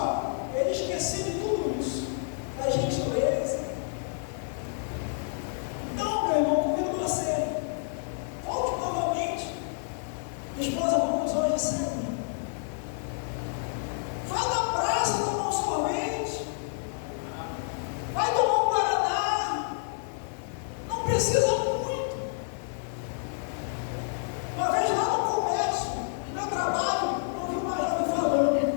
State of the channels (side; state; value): right; silent; digital silence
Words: ele esquecia de tudo isso, da gentileza. Então, meu irmão, convido você, volte novamente. Esposa, vamos hoje sair. Vai na praça tomar um sorvete. Vai tomar um guaraná. Não precisa muito. Uma vez lá no comércio, no meu trabalho, eu vi uma jovem